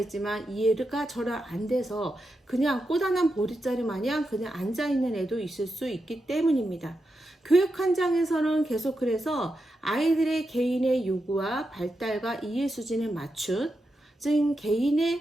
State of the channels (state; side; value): normal; both; correlation 0.87